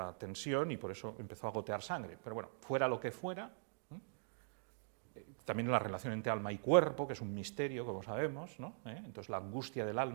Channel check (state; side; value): silent; left; digital silence